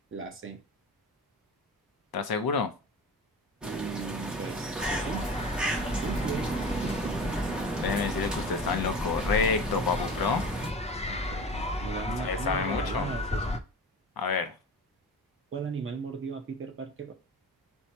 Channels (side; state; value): both; normal; correlation 0.34